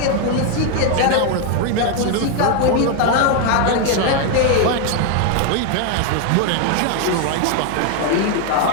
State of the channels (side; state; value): both; different; correlation 0.01